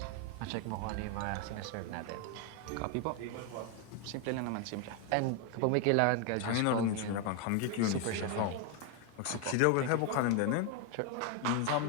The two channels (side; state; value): both; different; correlation 0.01